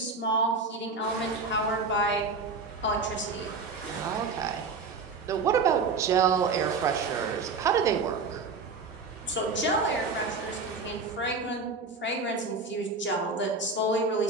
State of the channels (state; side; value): quieter; left; 4.2 dB